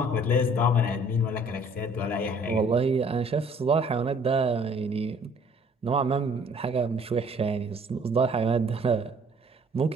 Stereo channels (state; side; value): normal; both; correlation 0.57